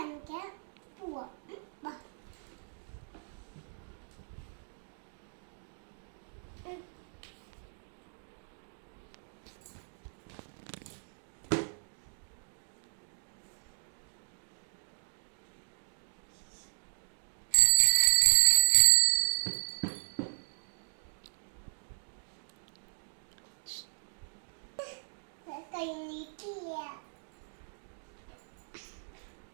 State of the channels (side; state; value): left; silent; digital silence